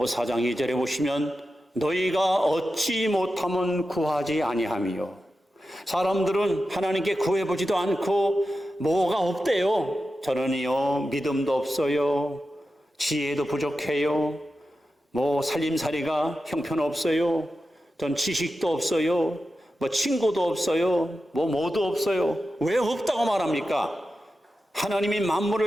4장 2절에 보시면 너희가 얻지 못하면 구하지 아니하며, 사람들은 하나님께 구해보지도 않고 뭐가 없대요. 저는요 믿음도 없어요, 지혜도 부족해요, 뭐 살림살이가 형편없어요, 전 지식도 없어요, 뭐 친구도 없어요, 뭐도 없어요. 왜 없다고 말합니까? 하나님이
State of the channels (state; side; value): normal; both; correlation 0.91